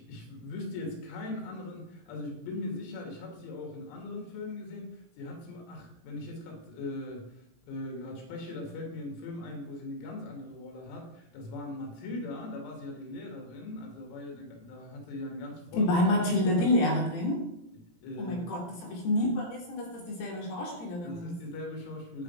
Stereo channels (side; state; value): right; late; 17 ms